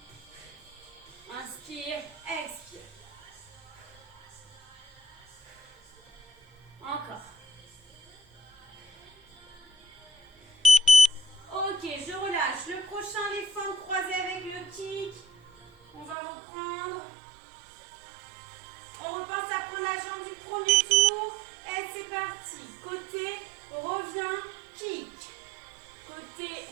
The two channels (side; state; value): left; drops out; at 16.2 s